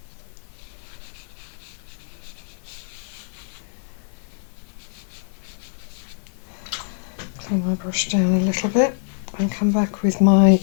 Clean my brush down a little bit and come back with my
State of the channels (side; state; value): right; silent; digital silence